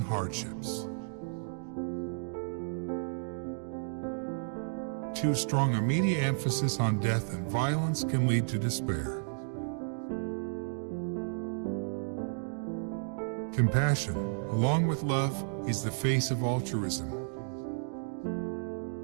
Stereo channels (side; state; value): left; silent; digital silence